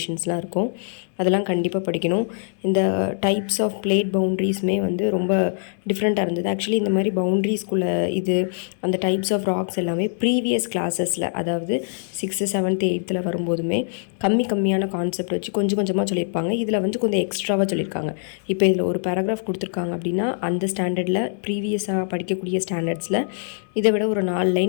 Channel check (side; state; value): right; silent; 63 dB below the other